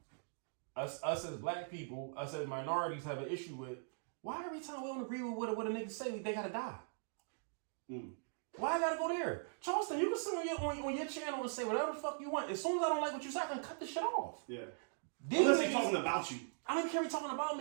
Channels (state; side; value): silent; left; digital silence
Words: us as black people, us as minorities have an issue with. Why every time we don't agree with what a nigga say, they gotta die? Why I gotta go there? Charleston, you can sit on your channel and say whatever the fuck you want. As soon as I don't like what you say, I can cut the shit off. Yeah. Unless they talking about you. I don't care if talking about